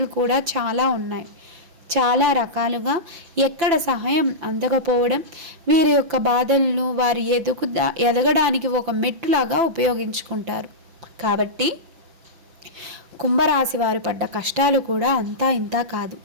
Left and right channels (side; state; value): left; late; 5.9 ms